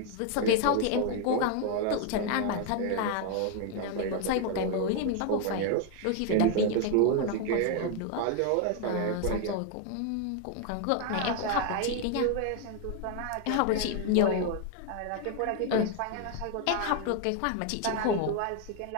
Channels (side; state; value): both; different; correlation 0.01